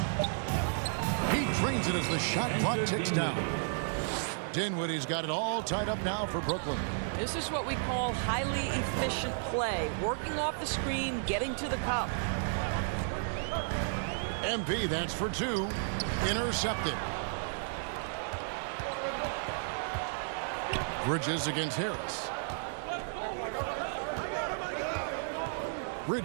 He drains it as the shot clock ticks down. Dinwiddie's got it all tied up now for Brooklyn. This is what we call highly efficient play. Working off the screen, getting to the cup. MP, that's for 2. Intercepted. Bridges against Harris.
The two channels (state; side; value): silent; left; digital silence